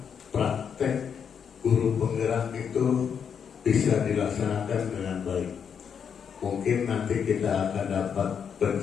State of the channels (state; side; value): quieter; right; 7.3 dB